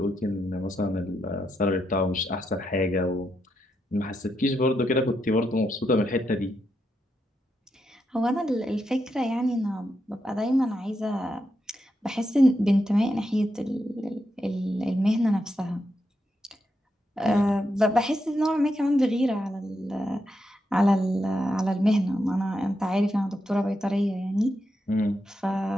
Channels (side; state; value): both; normal; correlation 0.83